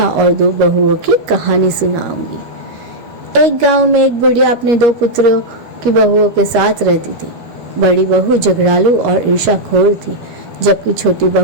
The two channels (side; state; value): left; late; 13 ms